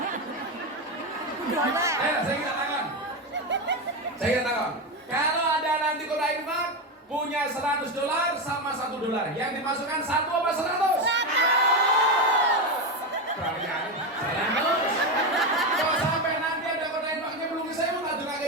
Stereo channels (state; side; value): normal; both; correlation 0.13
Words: Ayo, saya katakan, kalau ada nanti kotak infak punya $100 sama $1, yang dimasukkan 1 apa 100? 100. Kalian jalan terus. Kalau sampai nanti ada kotak infaknya belum saya mau ngadu ngake